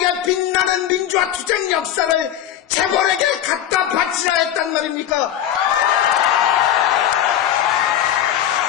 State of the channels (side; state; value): right; quieter; 10.8 dB